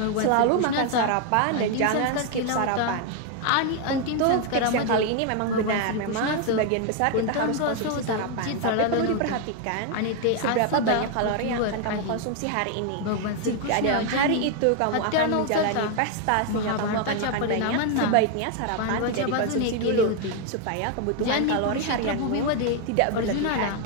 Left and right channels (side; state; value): both; different; correlation 0.01